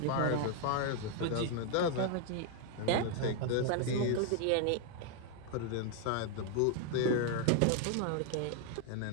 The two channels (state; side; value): different; both; correlation 0.00